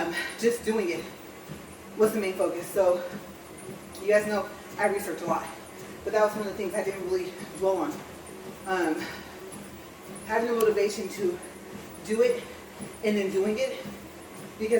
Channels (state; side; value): identical; both; correlation 1.00